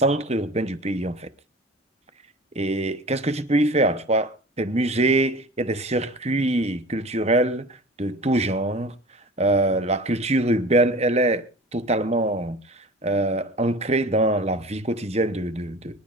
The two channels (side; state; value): both; normal; correlation 0.39